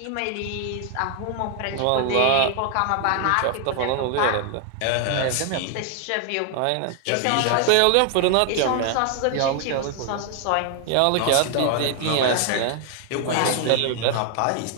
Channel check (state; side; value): different; both; correlation 0.00